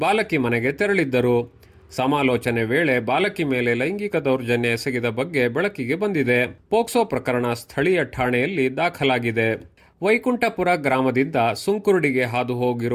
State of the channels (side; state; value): both; identical; correlation 1.00